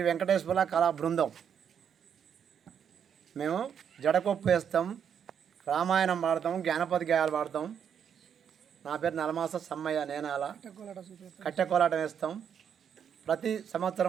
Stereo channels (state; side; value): quieter; left; 8.0 dB